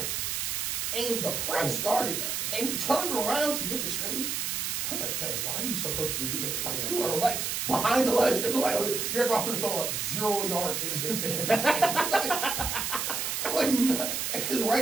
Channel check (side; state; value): right; noise; hiss, 1 dB below the sound